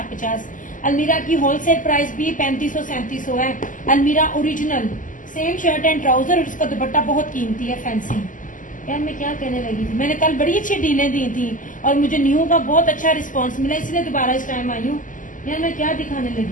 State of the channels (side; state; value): right; late; 0.38 ms